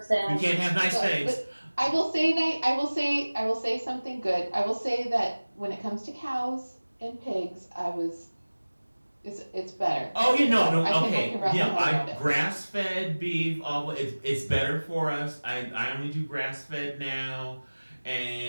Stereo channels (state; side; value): inverted; both; correlation -1.00